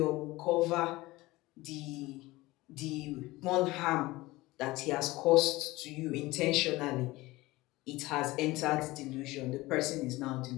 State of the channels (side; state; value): right; quieter; 19.8 dB